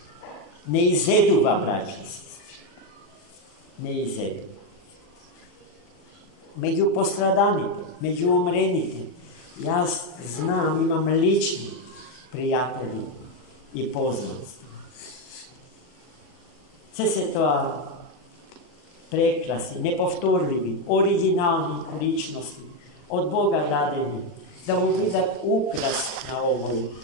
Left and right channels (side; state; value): right; late; 40 ms